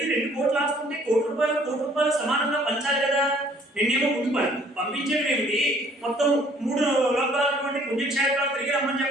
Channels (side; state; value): both; normal; correlation 0.58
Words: 2 కోట్లు ఆస్తుంటే కోటి రూపాయలు సమానంగా పంచాలి కదా. నిన్నేమో ముందు పంపించడం ఏమిటి? మొత్తం 3 లోకాలటువంటి పుణ్యక్షేత్రాలు తిరిగి రమ్మని